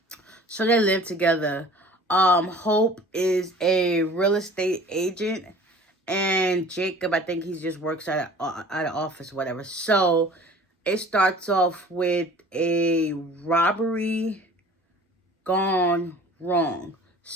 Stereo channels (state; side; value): normal; both; correlation 0.47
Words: So they live together. Hope is a real estate agent, and Jacob, I think he just works at an office, whatever. So it starts off with a robbery gone wrong.